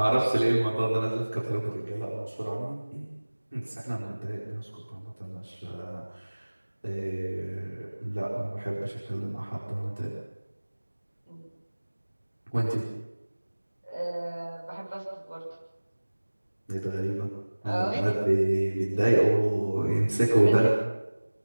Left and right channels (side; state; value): both; inverted; correlation -1.00